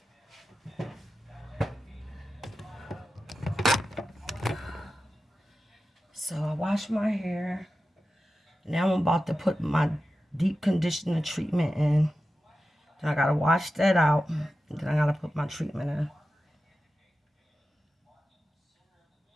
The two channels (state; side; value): normal; both; correlation 0.93